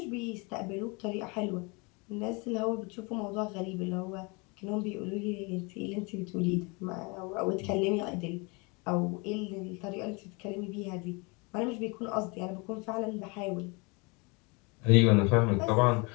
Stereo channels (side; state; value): right; quieter; 29.2 dB